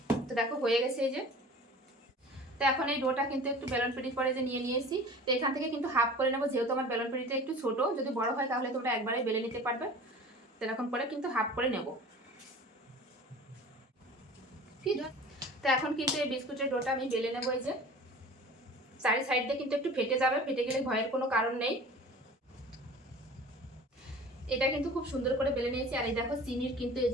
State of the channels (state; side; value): normal; both; correlation 0.41